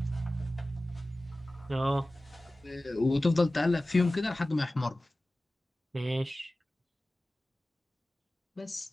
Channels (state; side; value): normal; both; correlation 0.96